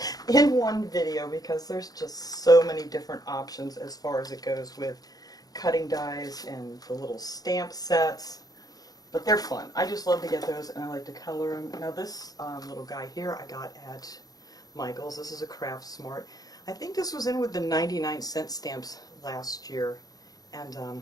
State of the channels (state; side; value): late; right; 0.18 ms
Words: in one video because there's just so many different options as far as it goes with cutting dies and the little stamp sets. But they're fun. I just love to get those and I like to color them. Now this little guy here I got at Michael's. This is a Craft Smart. I think this was in with the 99-cent stamps last year.